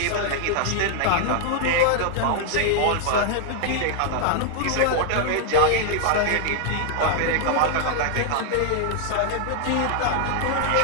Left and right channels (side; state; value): both; different; correlation 0.00